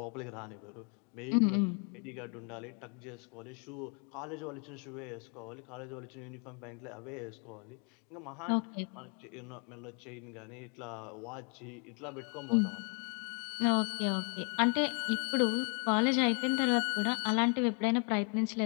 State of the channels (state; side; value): quieter; right; 39.1 dB